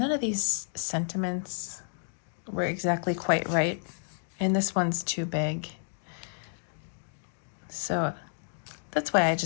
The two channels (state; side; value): silent; right; digital silence